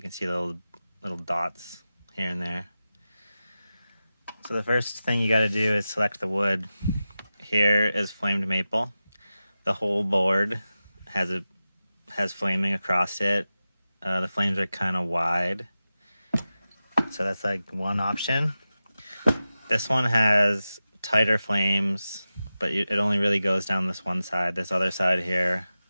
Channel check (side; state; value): both; inverted; correlation -0.94